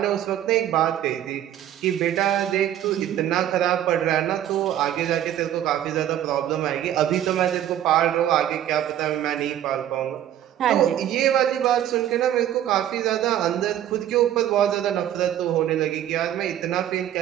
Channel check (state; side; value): quieter; left; 11.5 dB